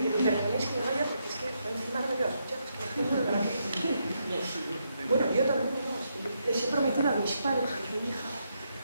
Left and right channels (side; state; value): both; inverted; correlation -0.80